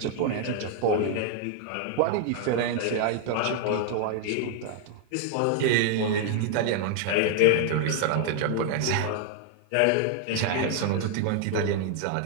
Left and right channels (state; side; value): different; both; correlation 0.00